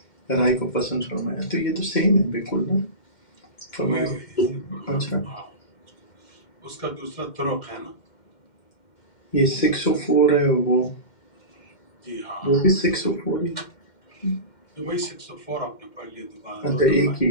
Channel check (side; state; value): right; late; 2.1 ms